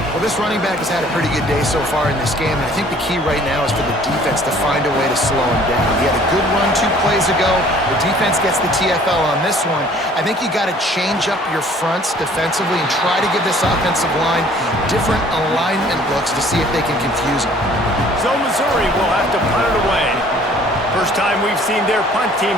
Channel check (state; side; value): normal; both; correlation 0.54